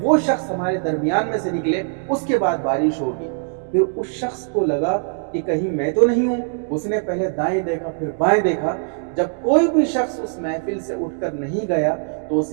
وہ شخص ہمارے درمیان میں سے نکلے، اس کے بعد بارش ہوگی۔ پھر اس شخص کو لگا کہ کہیں میں تو نہیں ہوں۔ اس نے پہلے دائیں دیکھا، پھر بائیں دیکھا۔ جب کوئی بھی شخص اس محفل سے اٹھ کر نہیں گیا تو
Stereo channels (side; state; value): left; silent; digital silence